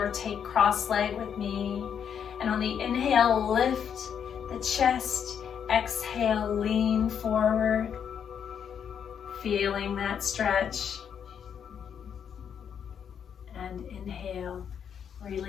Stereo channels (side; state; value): right; quieter; 8.0 dB